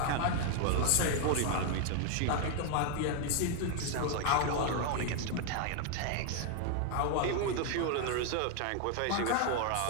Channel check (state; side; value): different; both; correlation 0.00